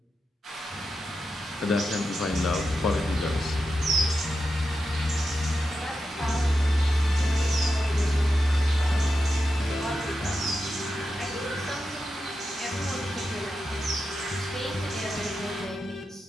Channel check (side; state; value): both; normal; correlation 0.89